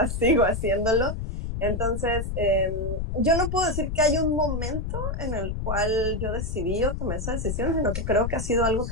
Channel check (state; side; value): noise; left; rumble, 3 dB below the sound